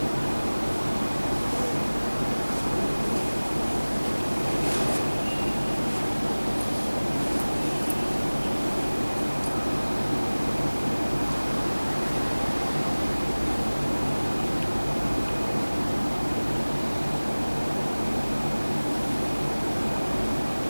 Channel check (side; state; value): both; inverted; correlation -1.00